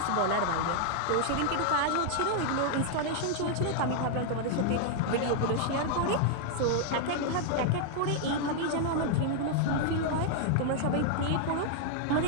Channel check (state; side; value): different; both; correlation -0.01